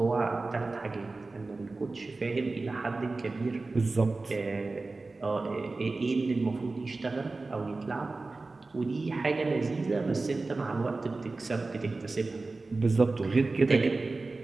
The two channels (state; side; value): quieter; left; 3.5 dB